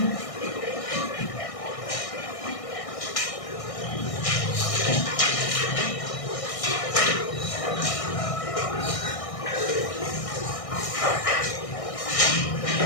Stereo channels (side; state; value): right; late; 1.6 ms